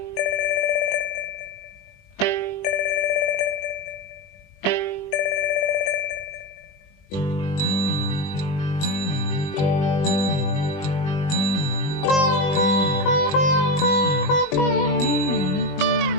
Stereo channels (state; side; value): late; right; 21 ms